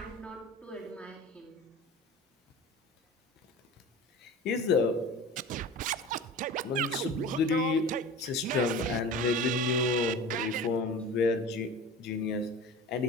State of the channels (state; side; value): normal; both; correlation 0.36